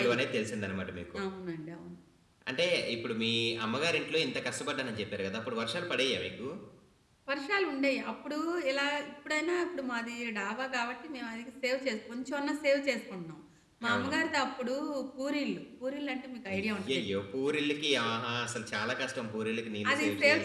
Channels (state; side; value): identical; both; correlation 1.00